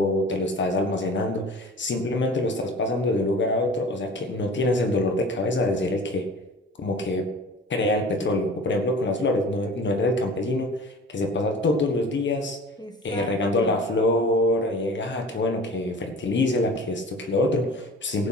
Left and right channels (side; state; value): both; normal; correlation 0.42